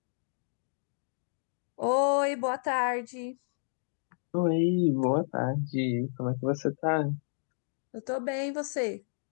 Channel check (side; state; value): right; silent; digital silence